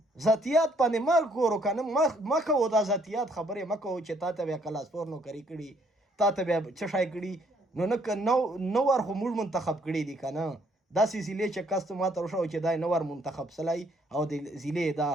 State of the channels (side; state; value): both; normal; correlation 0.67